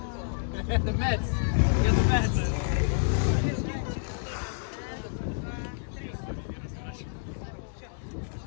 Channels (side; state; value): right; silent; digital silence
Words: The Mets. Get the Mets.